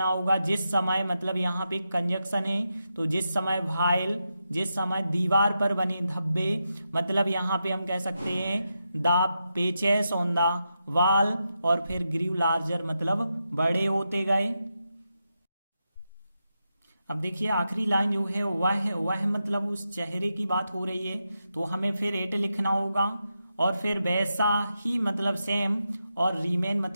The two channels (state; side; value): inverted; both; correlation -0.87